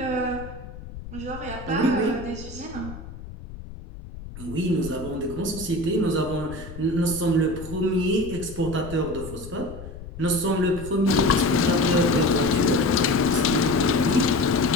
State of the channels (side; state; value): left; noise; rumble, 13 dB below the sound